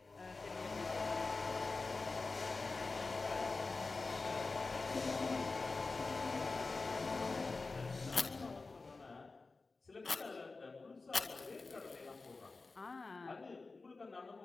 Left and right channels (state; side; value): quieter; right; 3.8 dB